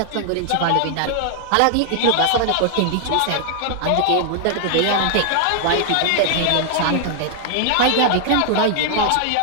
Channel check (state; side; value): different; both; correlation 0.00